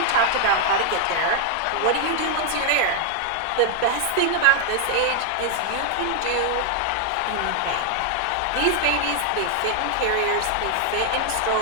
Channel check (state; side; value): different; both; correlation 0.00